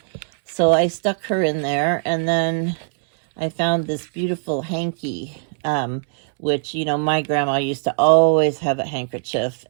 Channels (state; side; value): silent; left; 65 dB below the other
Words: so I stuck her in there. And then I found this beautiful hanky, which, my grandma used to always have a handkerchief,